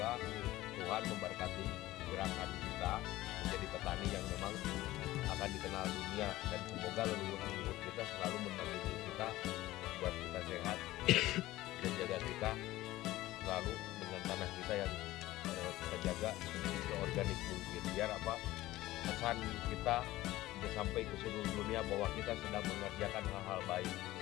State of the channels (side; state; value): right; quieter; 16.7 dB